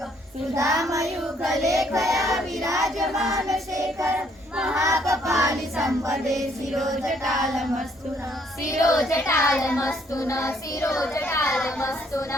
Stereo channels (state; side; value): normal; both; correlation 0.67